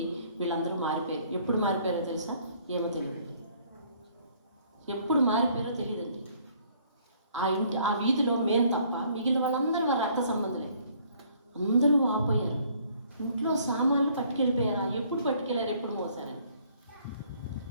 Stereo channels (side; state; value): both; inverted; correlation -0.61